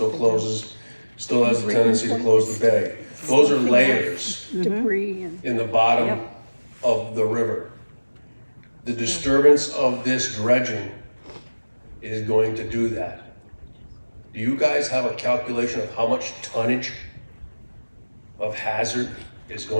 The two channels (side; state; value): both; inverted; correlation -1.00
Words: closes, still has a tendency to close the bay. Those are layers Debris in the bottom of the river. The disturbance of this dredging is going to do that. Do you guys have a calculation of how much tonnage of hazard is